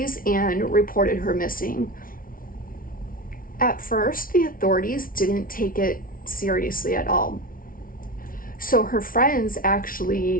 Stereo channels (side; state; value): right; late; 0.41 ms